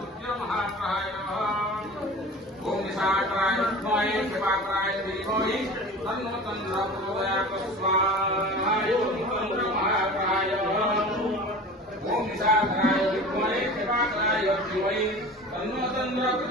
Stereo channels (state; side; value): normal; both; correlation 0.38